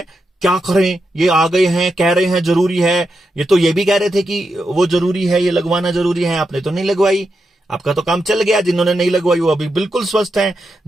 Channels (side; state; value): both; normal; correlation 0.86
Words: क्या करें, ये आ गए हैं, कह रहे हैं जरूरी है, ये तो ये भी कह रहे थे कि वो जरूरी है, ये लगवाना जरूरी है, आपने तो नहीं लगवाई, आपका तो काम चल गया। जिन्होंने नहीं लगवाई वो अभी बिल्कुल स्वस्थ हैं,